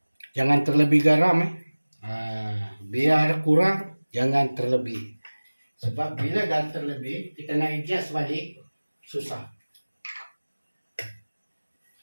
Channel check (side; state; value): both; inverted; correlation -1.00